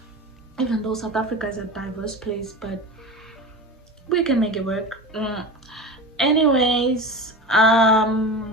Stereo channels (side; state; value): both; normal; correlation 0.29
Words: Even though South Africa is a diverse place, but we can make it work. Anyways,